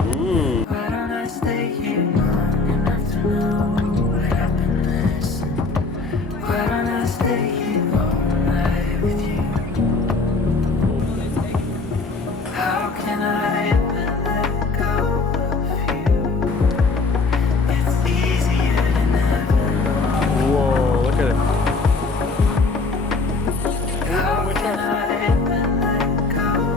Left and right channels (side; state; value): right; quieter; 3.9 dB